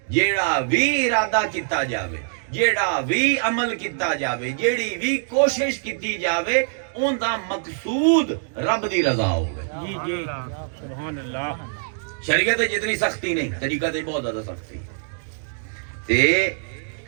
جیڑا بھی ارادہ کیتا جاوے جیڑا بھی عمل کیتا جاوے جیڑی بھی کوشش کیتی جاوے ان دا مقصود رب دی رضا ہوگی جی جی سبحان اللہ شریعت جتنی سختی نہیں طریقت بہت زیادہ سختی تے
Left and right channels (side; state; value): left; silent; digital silence